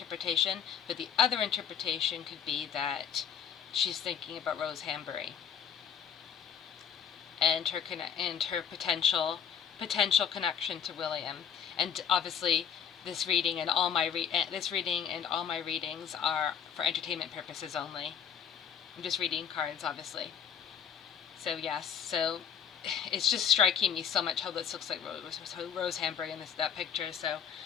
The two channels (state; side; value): quieter; right; 7.9 dB